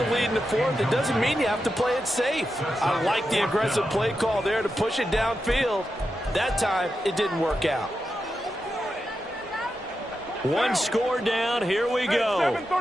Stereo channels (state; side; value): normal; both; correlation 0.88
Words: lead in the fourth, it doesn't mean you have to play it safe. I like the aggressive play call there to push it downfield. That time, it didn't work out. One score down. Here we go.